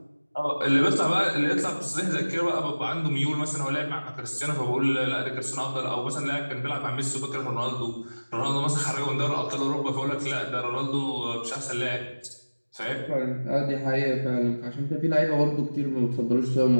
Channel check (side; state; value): both; inverted; correlation -1.00